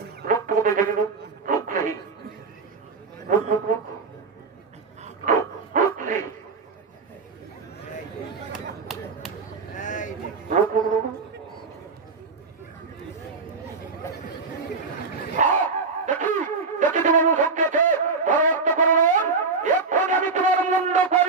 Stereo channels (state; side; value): quieter; left; 4.4 dB